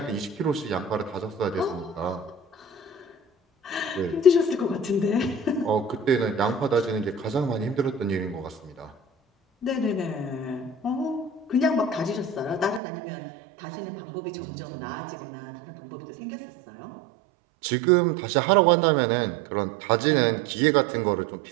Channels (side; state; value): left; drops out; at 12.8 s